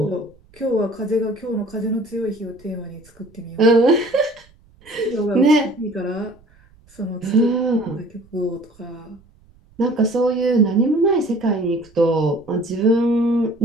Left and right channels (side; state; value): right; noise; rumble, 29 dB below the sound